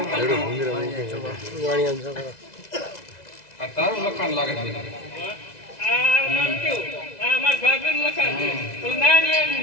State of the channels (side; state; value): right; late; 2.0 ms